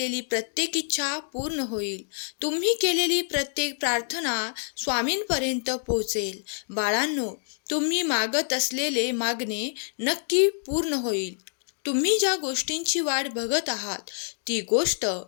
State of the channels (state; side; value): silent; right; digital silence